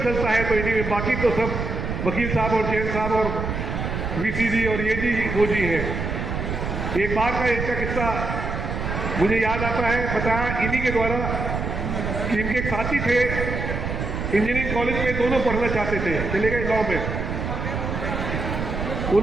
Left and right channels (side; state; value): right; noise; rumble, 3 dB below the sound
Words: चलता है तो इन्हीं में, बाकी तो सब वकील साहब और जैन साहब और वीसी जी और ये जी वो जी हैं। एक बार का इनका किस्सा मुझे याद आता है, बताया इन्हीं के द्वारा कि इनके एक साथी थे इंजीनियरिंग कॉलेज में, दोनों पढ़ना चाहते थे, चले गए लॉ में।